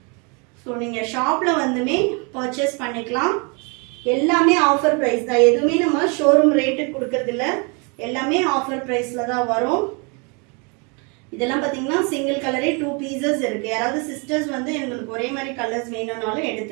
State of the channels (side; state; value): left; quieter; 33.0 dB